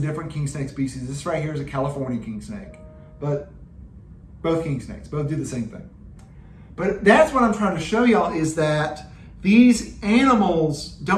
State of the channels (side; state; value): both; identical; correlation 1.00